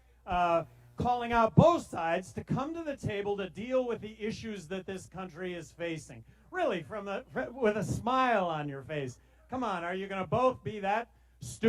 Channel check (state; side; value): identical; both; correlation 1.00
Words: calling out both sides to come to the table to deal with the issues that this country is facing. Really, with a smile on your face. Come on, are you going to both be that